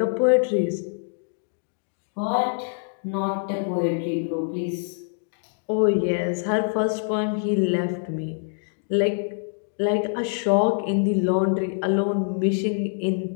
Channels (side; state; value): right; silent; digital silence